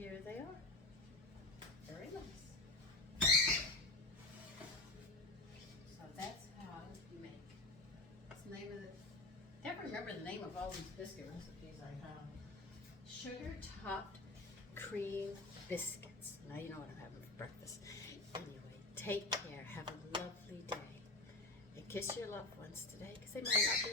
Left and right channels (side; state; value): right; quieter; 3.0 dB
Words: they are. Very nice. So that's how you make. What's the name of the... I can't remember the name of all these biscuit recipes I have. Sugar topped cream biscuits. Now you know what I'm having for breakfast. Anyway, take care. Have a lovely day. And kiss your loved ones today because they might not